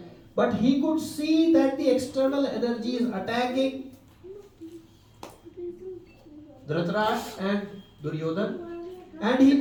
But he could see that the external energy is attacking Dhritarashtra and Duryodhan, and he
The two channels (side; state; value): both; identical; correlation 1.00